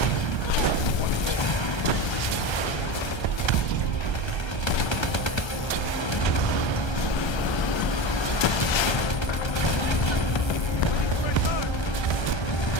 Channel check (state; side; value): late; right; 1.3 ms